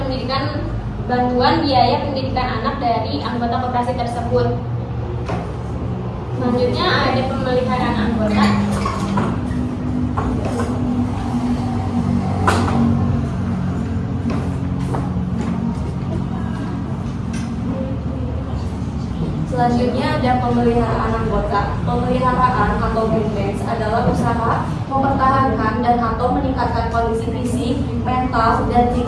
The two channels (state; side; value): identical; both; correlation 1.00